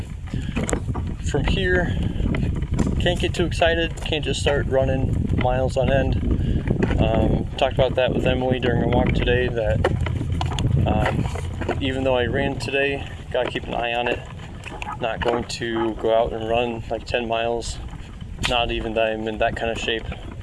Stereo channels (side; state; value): both; identical; correlation 1.00